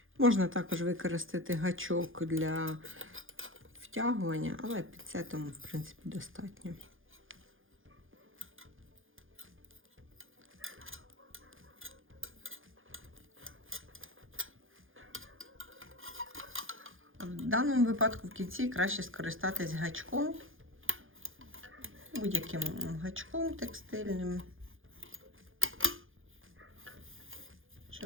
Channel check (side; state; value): left; late; 0.59 ms